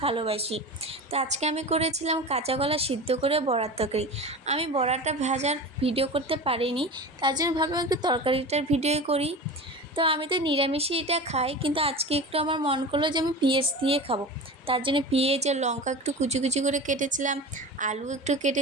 ভালোবাসি। তো আজকে আমি করেছিলাম কাঁচা কলা সিদ্ধ করে বড়ার তরকারি। আমি বড়াটা ভাজার ভিডিও করতে পারিনি, তার জন্য ভাবলাম একটু তরকারিটার ভিডিও করি। তো আমি তো নিরামিষই এটা খাই, কিন্তু আজকে একটু আমার মন করলো যে আমি পেঁয়াজ দিয়ে খাবো। তার জন্য পেঁয়াজ আর লঙ্কা একটু কুচি কুচি করে কেটেছিলাম, আলু একটু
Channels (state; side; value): normal; both; correlation 0.31